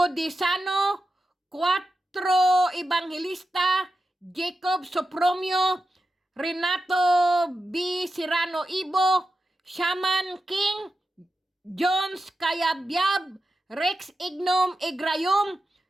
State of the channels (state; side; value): normal; both; correlation 0.90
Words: 4 Evangelista, Jacob Sopromio, Renato B. Serrano Ibo, Shaman King, Jones Kayabyab, Rex Ignom Igrayom,